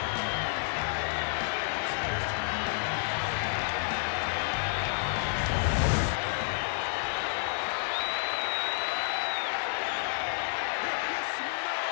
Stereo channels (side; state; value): right; silent; digital silence